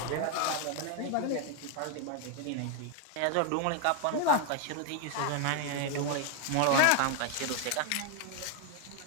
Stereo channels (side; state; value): both; different; correlation 0.01